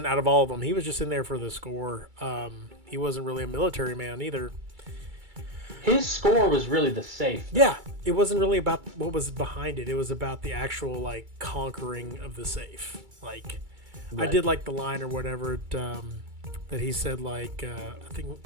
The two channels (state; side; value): late; left; 2.3 ms